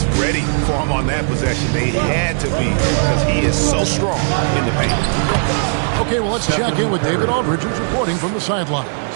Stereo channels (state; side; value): silent; left; 68 dB below the other